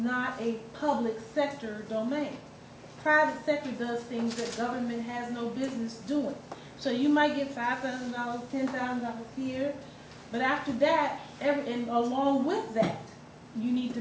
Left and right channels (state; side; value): identical; both; correlation 1.00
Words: a public sector domain. Private sector does things that government has no business doing. So you might get $5,000, $10,000 here, but after that, and along with that, you need